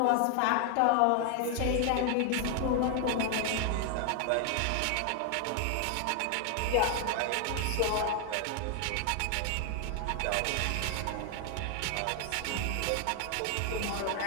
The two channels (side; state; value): both; different; correlation 0.00